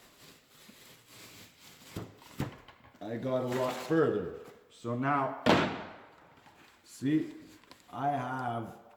I got a lot further. So now, see, I have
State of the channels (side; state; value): both; identical; correlation 1.00